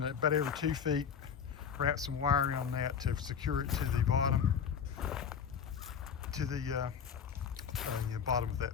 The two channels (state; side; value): quieter; right; 7.3 dB